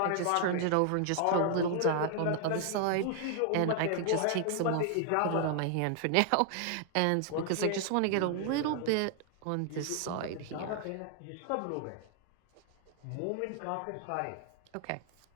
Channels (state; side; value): different; both; correlation 0.00